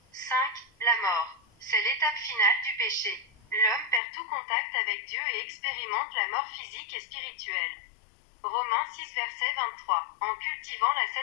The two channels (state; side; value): drops out; right; at 4.0 s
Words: 5. La mort. C'est l'étape finale du péché. L'homme perd tout contact avec Dieu et expérimente la mort physique et spirituelle. Romains 6 verset 23. En cultivant la